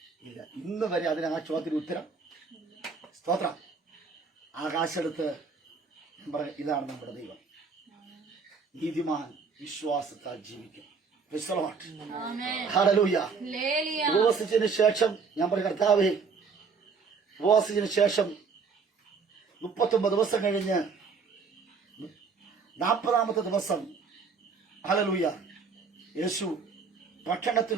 ഇല്ല. ഇന്ന് വരെ അതിന് ആ ചോദ്യത്തിന് ഉത്തരം. സ്തോത്രം. ആകാശെടുത്ത് ഇതാണ് നമ്മുടെ ദൈവം. നീതിമാൻ വിശ്വാസത്താൽ ജീവിക്കും. ഹല്ലേലൂയ. ഉപവസിച്ചതിന് ശേഷം ഞാൻ പറയും, കർത്താവേ ഉപവസിച്ചതിന് ശേഷം 39 ദിവസം കഴിഞ്ഞ് 40ാമത്തെ ദിവസം ഹല്ലേലൂയ യേശു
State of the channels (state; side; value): quieter; left; 5.1 dB